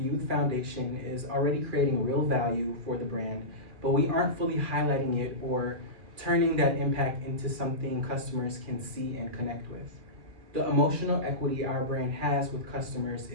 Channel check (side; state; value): left; late; 2.4 ms